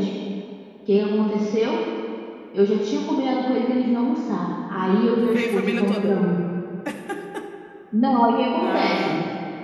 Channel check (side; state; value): both; identical; correlation 1.00